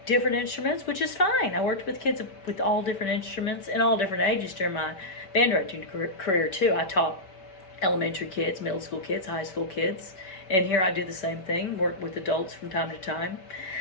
different instruments, which is fine. I worked with kids with all different instruments and all different ages during my band directing career too. I taught elementary kids, middle school kids, high school kids, and here I do the same thing, work with adults from time to time,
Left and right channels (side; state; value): right; late; 5.2 ms